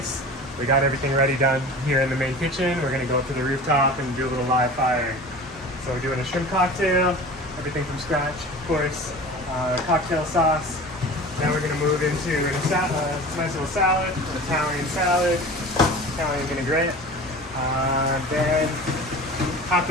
We got everything ready done here in the main kitchen. We're gonna go up to the rooftop and do a little live firing. So we're doing a shrimp cocktail, everything from scratch, of course. Cocktail sauce. Now we're gonna move into a nice little salad, an Italian salad, Italian vinaigrette. Then have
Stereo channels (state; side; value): normal; both; correlation 0.37